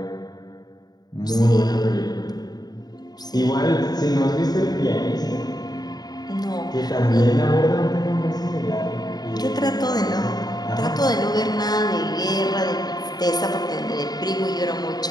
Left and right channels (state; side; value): late; right; 0.19 ms